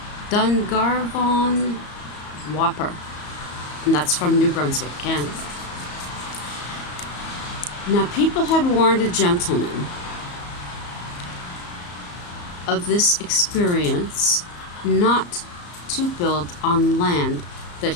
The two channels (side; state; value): right; late; 34 ms